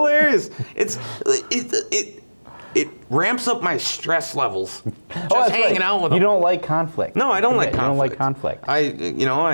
It ramps up my stress levels. Just hanging out with them. You don't like conflict. No, I don't like conflict. You don't like conflict.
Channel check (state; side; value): inverted; both; correlation -1.00